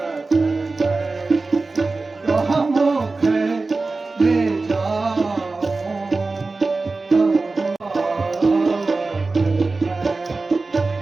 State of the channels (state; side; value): quieter; left; 3.6 dB